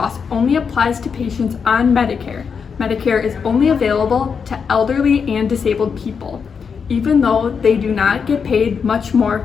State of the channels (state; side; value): quieter; right; 6.1 dB